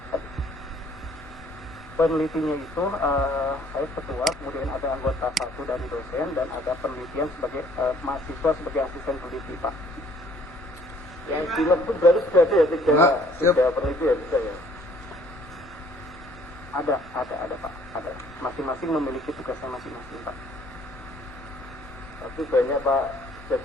itu saya ketua, kemudian ada anggota 1 dari dosen, dan ada penelitian sebagai mahasiswa sebagai asisten peneliti, Pak. Yang di logbook berarti sudah ada ya tiga peneliti ya, bisa ya? Ada Pak, ada. Masing-masing memiliki tugasnya masing-masing, Pak. Tapi banyak Pak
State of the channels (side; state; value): both; normal; correlation 0.59